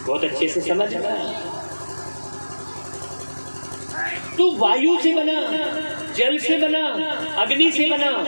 बहुत अच्छे से समझ रहा है। तो वायु से बना, जल से बना, अग्नि से बना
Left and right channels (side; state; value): both; inverted; correlation -1.00